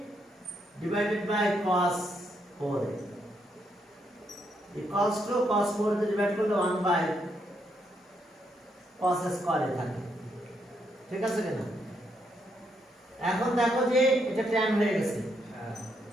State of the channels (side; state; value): both; normal; correlation 0.77